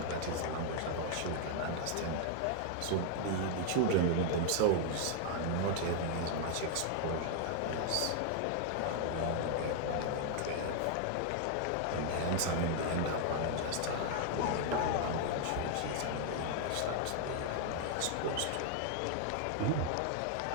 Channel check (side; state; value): both; different; correlation 0.00